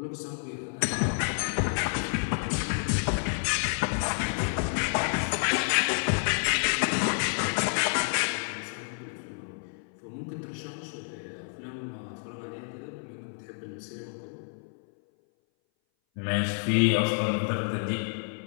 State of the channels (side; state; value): right; silent; 58 dB below the other